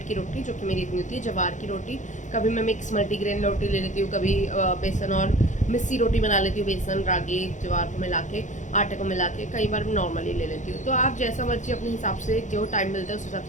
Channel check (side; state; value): right; late; 0.36 ms